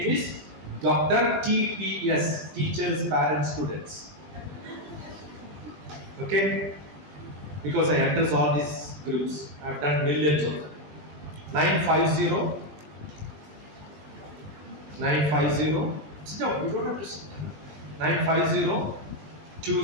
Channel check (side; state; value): left; late; 20 ms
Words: is DrTPS, Teachers, Parents, Students. Okay? Because I address all these groups. I have done millions of them. 950. Sit down, you don't have to sit down. 950